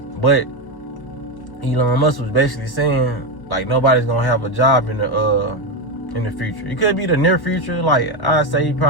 But Elon Musk was basically saying, like, nobody's going to have a job in the future. It could be the near future, like, I'd say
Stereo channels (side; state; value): right; late; 1.1 ms